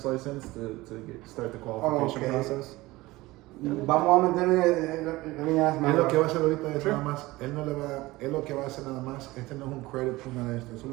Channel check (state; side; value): quieter; left; 19.7 dB